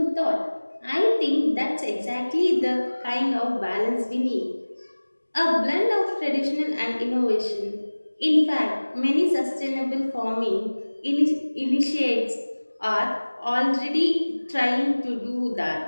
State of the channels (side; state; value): both; inverted; correlation -1.00